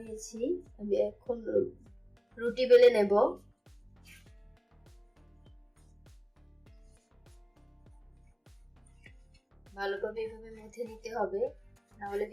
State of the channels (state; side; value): identical; both; correlation 1.00